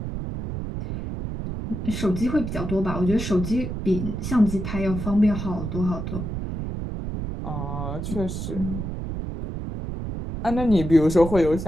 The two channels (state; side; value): noise; right; rumble, 5 dB below the sound